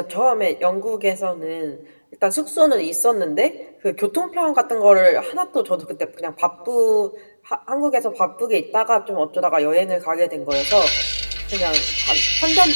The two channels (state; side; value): inverted; both; correlation -1.00